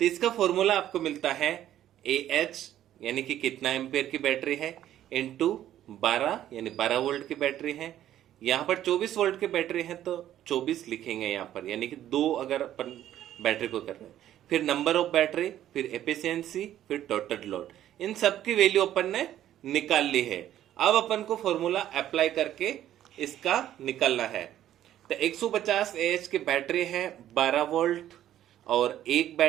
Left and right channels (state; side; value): quieter; left; 12.0 dB